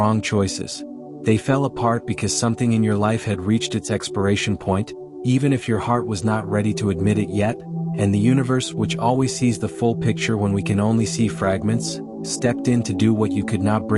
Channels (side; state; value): both; identical; correlation 1.00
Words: choices. They fell apart because something in your life had reached its expiration point, even if your heart was not ready to admit it yet, and the universe, which always sees the full picture when we can only see fragments, stepped in to do what you could not